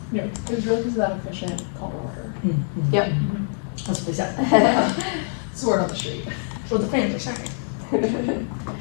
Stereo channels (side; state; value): right; silent; 62 dB below the other